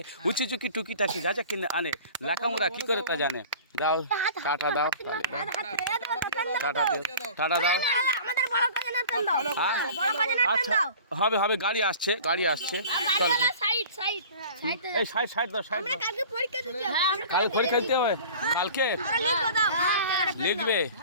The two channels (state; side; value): inverted; both; correlation -0.42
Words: উঁচি চুকি টুকি টাকি যা যা কিনে আনে, লেখামোড়া কি করে তা জানে। দাও টাটা দাও, টাটা দাও, টাটা দাও। আচ্ছা হবে হবে, গাড়ি আসছে চলো। এই সাইড দাও। কালকে পরীক্ষা দিতে হবে, কালকে লিখবে,